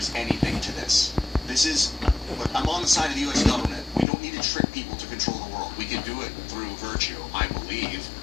anything to this. This is, look, I'm on the side of the U.S. government. We don't need to trick people to control the world. We can do it through virtue, I believe.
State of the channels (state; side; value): drops out; right; at 4.0 s